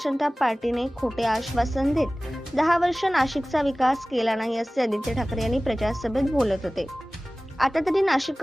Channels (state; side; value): normal; both; correlation 0.98